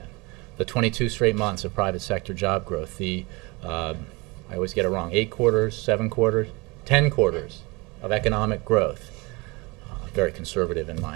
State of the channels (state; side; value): quieter; left; 25.9 dB